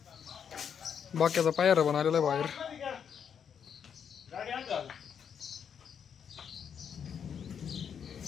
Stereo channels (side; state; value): right; quieter; 7.6 dB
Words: बाक्याचा पायरा बनवलेला आहे बाहेर।